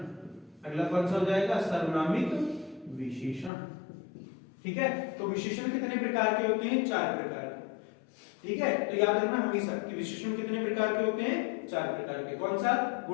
अगला कौन सा हो जाएगा? सर्वनामिक विशेषण। ठीक है, तो विशेषण कितने प्रकार के होते हैं? 4 प्रकार के। ठीक है, तो याद रखना हमेशा कि विशेषण कितने प्रकार के होते हैं? 4 प्रकार के। कौन सा?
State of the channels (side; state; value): right; drops out; at 3.5 s